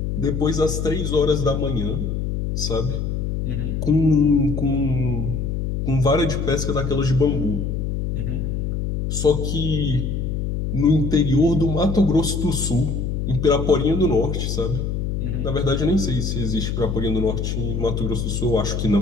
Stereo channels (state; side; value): noise; left; hum, 2 dB below the sound